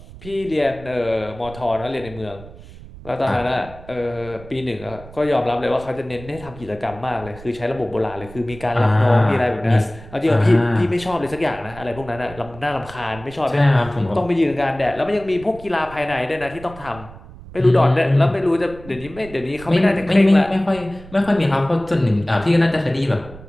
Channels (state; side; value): noise; right; rumble, 18 dB below the sound